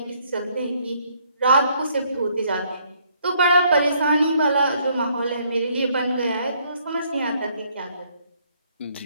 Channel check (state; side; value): inverted; both; correlation -0.67